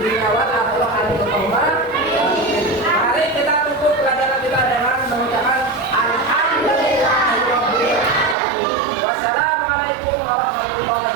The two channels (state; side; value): drops out; left; at 8.3 s